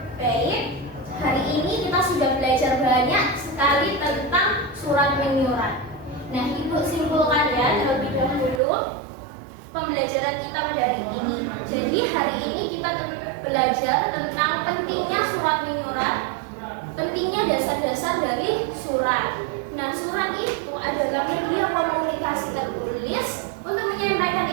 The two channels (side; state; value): left; drops out; at 8.6 s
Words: Baik, hari ini kita sudah belajar banyak sekali tentang surat menyurat. Nah, Ibu simpulkan ya terlebih dahulu pembelajaran kita pada hari ini. Jadi hari ini kita belajar tentang pentingnya surat menyurat, pentingnya dasar-dasar dari surat. Nah, surat itu adalah media komunikasi tertulis untuk menyampaikan